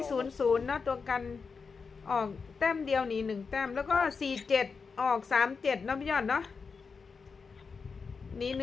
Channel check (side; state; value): right; quieter; 5.1 dB